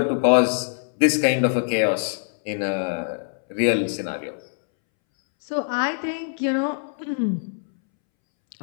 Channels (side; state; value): right; silent; 63 dB below the other